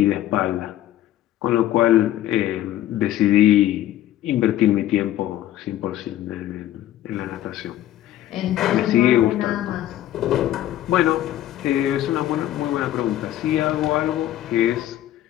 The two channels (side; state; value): right; quieter; 13.1 dB